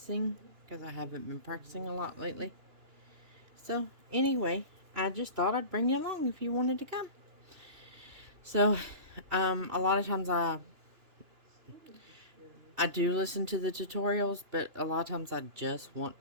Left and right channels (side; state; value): left; late; 2.9 ms